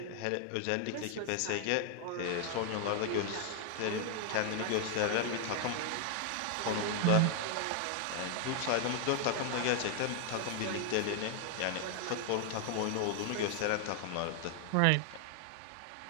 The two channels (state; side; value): different; both; correlation 0.00